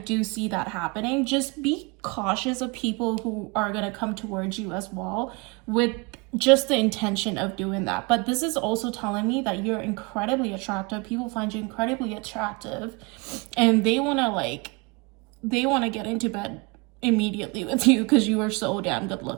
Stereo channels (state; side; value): quieter; left; 28.2 dB